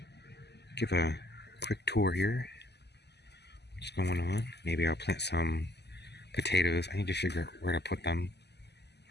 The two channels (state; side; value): late; right; 0.49 ms